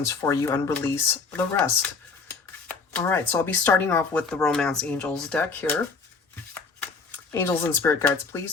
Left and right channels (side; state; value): right; quieter; 4.7 dB